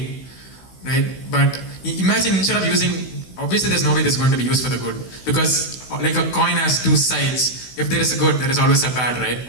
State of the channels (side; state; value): right; late; 16 ms